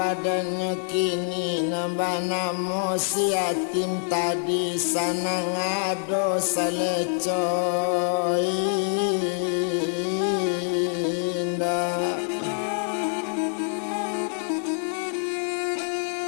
kini nambah namo si yatim tadi sana ngado salecoy indah.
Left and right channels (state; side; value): silent; right; digital silence